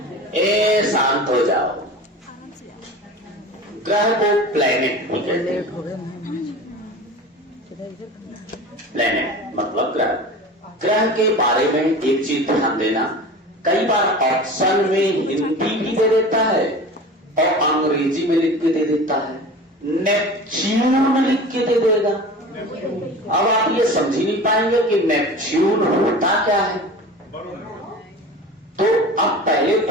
ए शांत हो जाओ, ग्रह को प्लैनेट भी कहते हैं। प्लैनेट मतलब ग्रह। ग्रह के बारे में एक चीज ध्यान देना, कई बार ऑप्शन में हिंदी भी दे देता है और अंग्रेजी में लिख के दे देता है। नेपच्यून लिख के दे देगा। अब आप ये समझ ही नहीं पाएंगे कि नेपच्यून होता क्या है। तो अब पहले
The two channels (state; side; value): normal; both; correlation 0.35